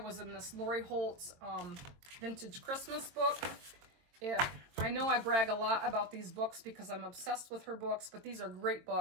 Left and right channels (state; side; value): late; left; 22 ms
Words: in this Lori Holt's vintage Christmas book. I know I brag a lot about these books because I'm obsessed with her books, but these are great